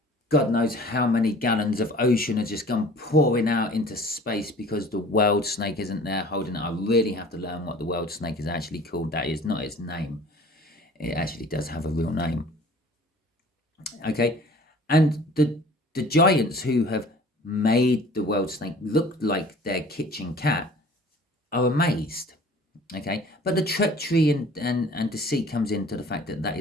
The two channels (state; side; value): normal; both; correlation 0.48